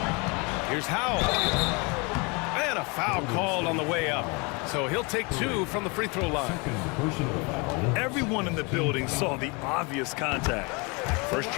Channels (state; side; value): quieter; right; 29.6 dB